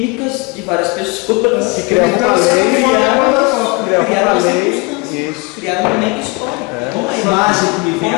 de várias pessoas. Então, você não Criaram uma circunstância. Criaram um momento histórico. Uma imagem que me vem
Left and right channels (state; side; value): quieter; right; 27.9 dB